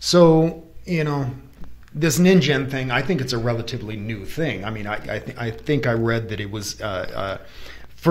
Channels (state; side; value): identical; both; correlation 1.00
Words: So, this Ningen thing, I think it's a relatively new thing. I think I read that it was